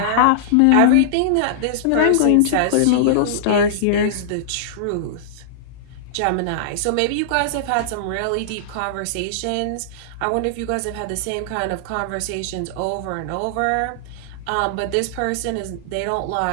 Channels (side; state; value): both; different; correlation -0.02